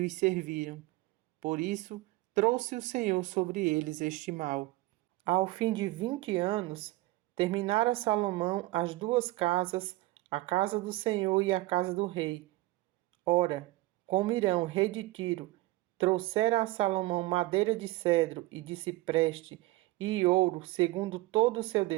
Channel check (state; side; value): quieter; left; 19.2 dB